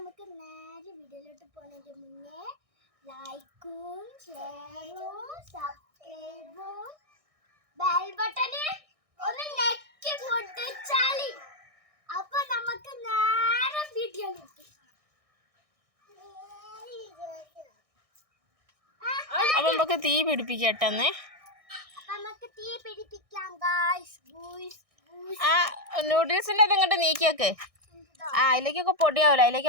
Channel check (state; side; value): late; left; 1.6 ms